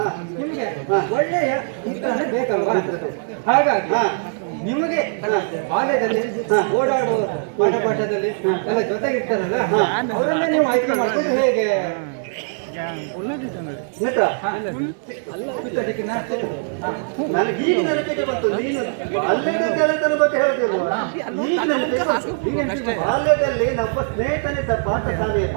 ನಿಮಗೆ ಒಳ್ಳೆಯ ಮಿತ್ರನೇ ಬೇಕಲ್ವಾ? ಹಾಗಾಗಿ ಹಾ. ನಿಮಗೆ ಬಾಲ್ಯದಲ್ಲಿ ಓಡಾಡುವ ಪಾಠದಲ್ಲಿ ಎಲ್ಲ ಜೊತೆಗಿರ್ತಾರಲ್ಲ, ಅವರನ್ನ ನೀವು ಆಯ್ಕೆ ಮಾಡ್ಕೊಂಡು ಹೇಗೆ? ಮಿತ್ರ, ಪಿತ್ತದಿಕ್ಕಿನ? ಹಾ. ನನಗೆ ಈಗ ನೆನಪಿಗೆ ಬಂತು. ನೀನು ಬಾಲ್ಯದ ಗೆಳೆತನ ಬಗ್ಗೆ ಹೇಳ್ತಿಲ್ವಾ? ಈಗ ನೆನಪಿಗೆ ಬಂತು. ಬಾಲ್ಯದಲ್ಲಿ ನಮ್ಮ ಸ್ನೇಹಿತನಿದ್ದ ಪಾಠಶಾಲೆಯ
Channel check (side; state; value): left; silent; 65 dB below the other